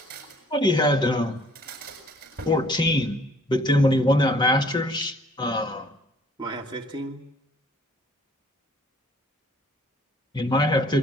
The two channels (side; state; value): both; normal; correlation 0.58